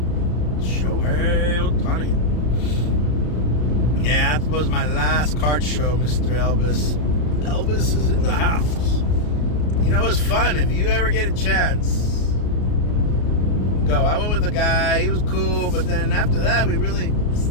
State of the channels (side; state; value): right; late; 33 ms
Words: Shohei Ohtani. Yeah, that was my last card show, Mr. Elvis. Elvis is in the house. You know, it was fun. If you ever get a chance, go. I went with a guy. He was cool, but then after that, we really,